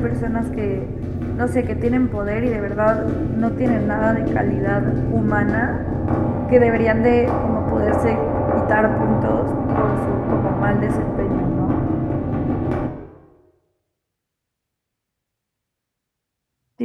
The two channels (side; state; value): both; identical; correlation 1.00